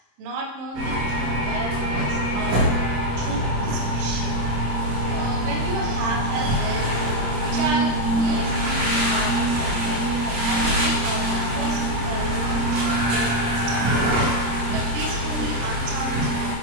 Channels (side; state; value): left; late; 26 ms